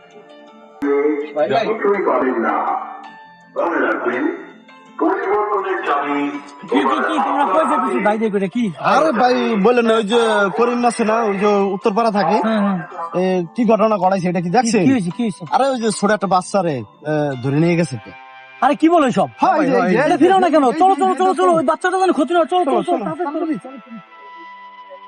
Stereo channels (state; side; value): identical; both; correlation 1.00